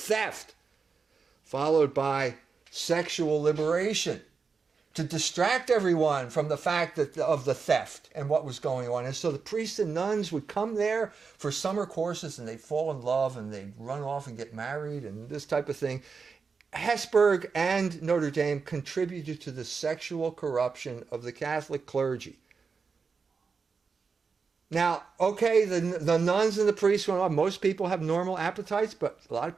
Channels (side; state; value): left; quieter; 5.2 dB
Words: followed by sexual liberation, to distract everyone from the fact of the theft and what was going on. And so the priests and nuns would come there for summer courses, and they'd fall in love, and they'd run off and get married and this type of thing. Hesburgh and Notre Dame contributed to the sexual corruption of the Catholic clergy. Now, okay, the nuns and the priests went on. Most people have normal appetites, but a lot of